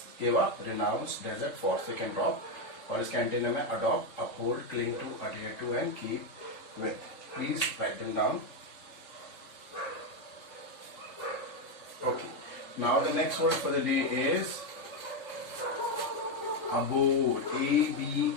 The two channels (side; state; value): right; late; 3.7 ms